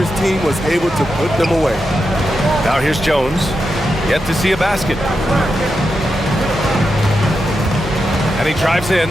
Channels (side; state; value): both; normal; correlation 0.87